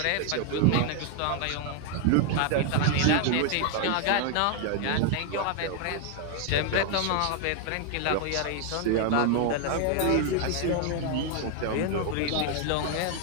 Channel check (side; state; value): both; different; correlation 0.00